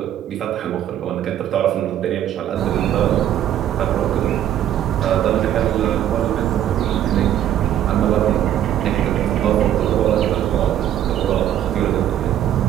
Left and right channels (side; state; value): left; quieter; 11.2 dB